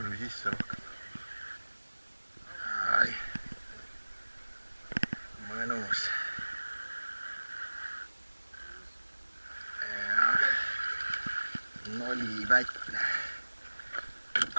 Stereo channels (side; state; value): both; inverted; correlation -1.00